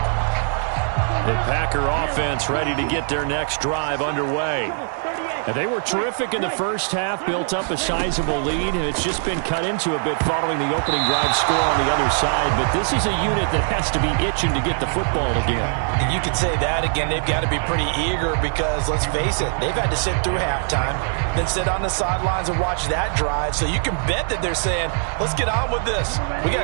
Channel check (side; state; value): left; silent; 60 dB below the other